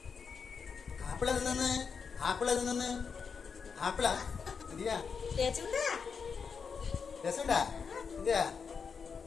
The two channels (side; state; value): right; quieter; 5.8 dB